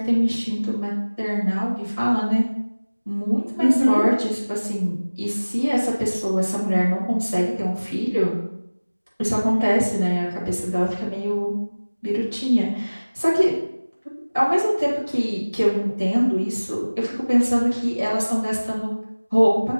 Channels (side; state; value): both; inverted; correlation -1.00